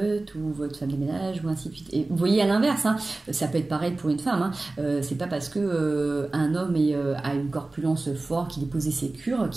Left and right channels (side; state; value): left; quieter; 3.1 dB